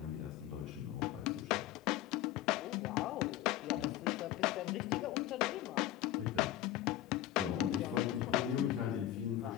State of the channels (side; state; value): right; quieter; 13.4 dB